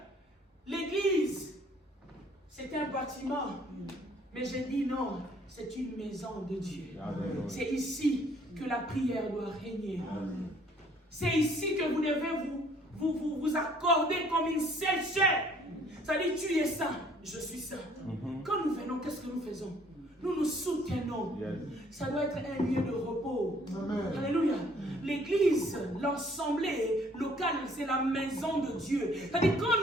l'église, c'est un bâtiment. Mais je dis non, c'est une maison de Dieu. C'est ici que la prière doit régner. C'est ici que vous devez vous accorder comme une seule chair. C'est-à-dire, tu es saint, je suis saint. Quand nous venons, qu'est-ce que nous faisons? Nous nous soutenons. Ça doit être un lieu de repos. Amen. Alléluia. L'église, l'assemblée locale, c'est la maison de Dieu. C'est-à-dire, quand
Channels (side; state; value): both; normal; correlation 0.60